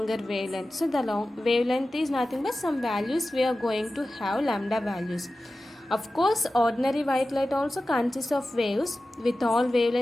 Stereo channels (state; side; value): normal; both; correlation 0.95